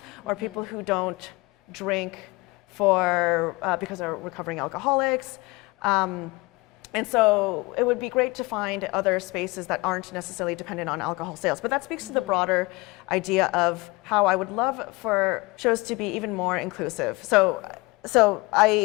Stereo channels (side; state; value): right; quieter; 23.8 dB